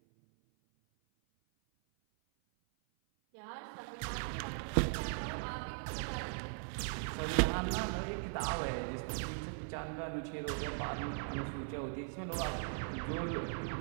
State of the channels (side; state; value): left; silent; 52 dB below the other